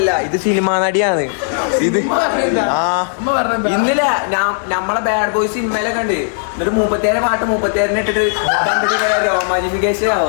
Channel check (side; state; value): right; silent; digital silence